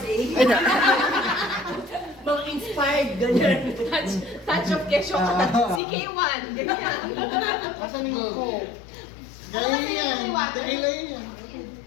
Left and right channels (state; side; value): drops out; right; at 5.8 s